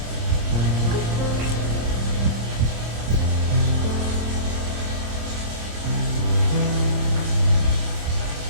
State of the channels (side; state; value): left; late; 26 ms